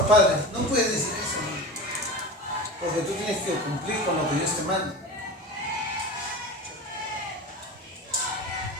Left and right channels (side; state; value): both; normal; correlation 0.30